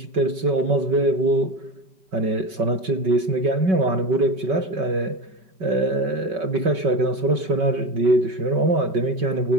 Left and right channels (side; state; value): left; late; 5.3 ms